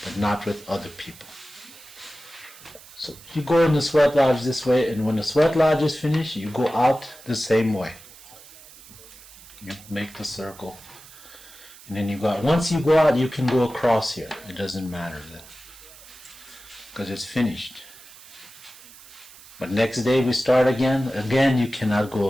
but not with other people. So you go in the sweat lodge this way, and when the sweat lodge is finished, you go out the same way. You make the circle, and then you go out. Once you go out, you can go across here. It doesn't matter then, because it's finished. But next day we start again. Again, you cannot go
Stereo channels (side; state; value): right; noise; hiss, 20 dB below the sound